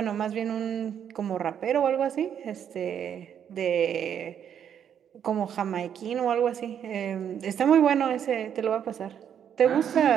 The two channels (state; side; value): quieter; left; 8.8 dB